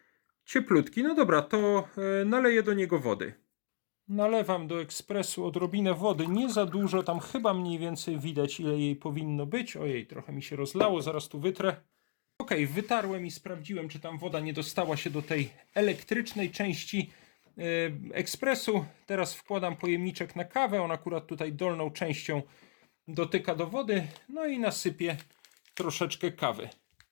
cieplutki. No dobra, to naleję do niego wody. Nalewam do ekspresu odrobinę wody, nie za dużo, tam chyba mniej więcej widać, ile jej powinno być. Ojej, trochę mi się rozlało, zaraz tu wytrę. Ok, wytarłem i sprawdziłem, czy tam woda nie dostała się do tej elektrycznej części ekspresu. Teraz wkładam pojemniczek na kawę, on akurat tutaj dolną częścią dotyka do wody, no i nasypię troszeczkę kawy.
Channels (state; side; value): silent; right; digital silence